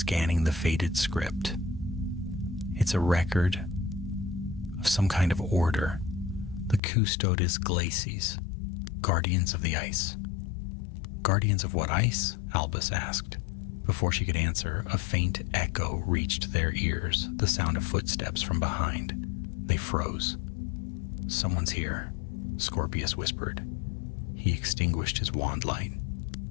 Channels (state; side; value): drops out; right; at 6.8 s